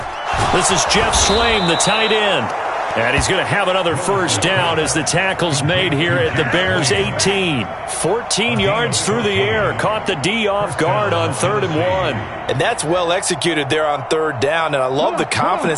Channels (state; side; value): identical; both; correlation 1.00